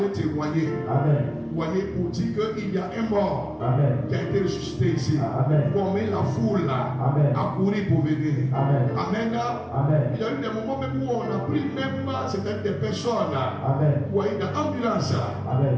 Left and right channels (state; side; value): identical; both; correlation 1.00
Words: témoigner. Amen. Vous voyez, pour dire qu'il y a un mort Amen. qui a été ressuscité ici. Amen. Pour mettre la foule là Amen. à courir pour venir. Amen. Amen. Amen. Il y a eu des moments même où on a pris même certaines des personnes. Amen. Vous voyez, dans l'ambulance. Amen.